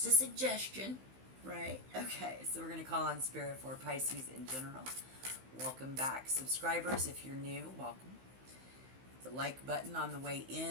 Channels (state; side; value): late; left; 15 ms